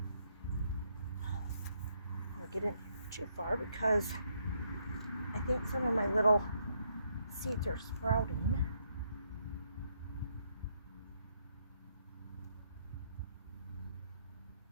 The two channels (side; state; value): both; inverted; correlation -0.73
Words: I'm gonna get in too far because I think some of my little seeds are sprouting.